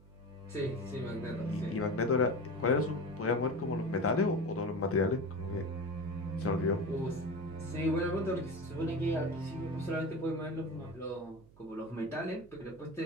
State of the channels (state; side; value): noise; right; hum, 24 dB below the sound